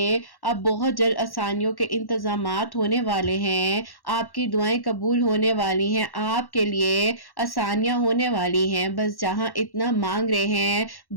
अब बहुत जल्द आसानियों के इंतजामात होने वाले ہیں، آپ کی دعائیں قبول ہونے والی ہیں، آپ کے لیے آسانیاں ہونے والی ہیں۔ بس جہاں اتنا مانگ رہے ہیں،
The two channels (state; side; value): late; right; 1.1 ms